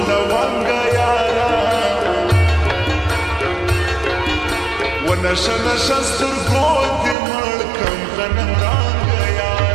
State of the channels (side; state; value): left; drops out; at 7.2 s